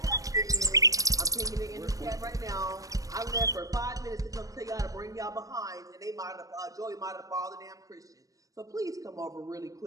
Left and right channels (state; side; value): late; left; 0.16 ms